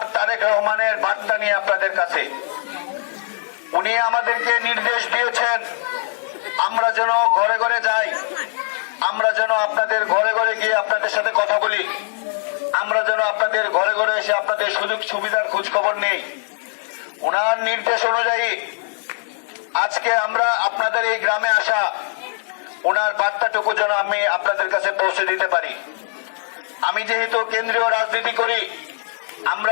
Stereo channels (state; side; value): silent; right; 62 dB below the other